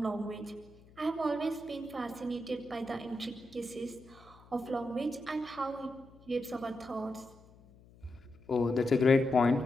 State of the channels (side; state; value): left; noise; hum, 24 dB below the sound